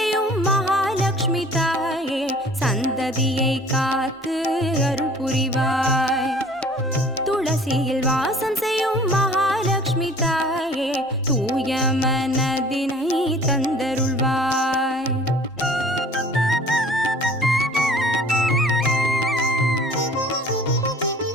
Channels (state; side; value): normal; both; correlation 0.50